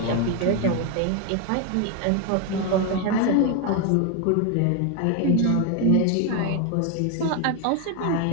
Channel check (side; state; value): both; different; correlation 0.01